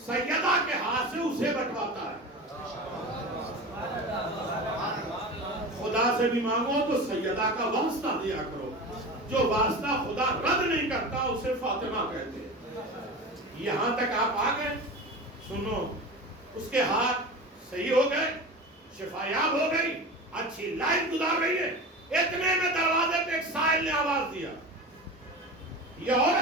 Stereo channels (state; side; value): normal; both; correlation 0.30